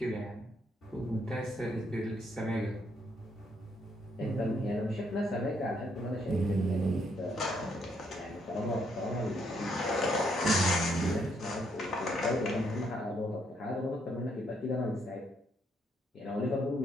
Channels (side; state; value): both; normal; correlation 0.73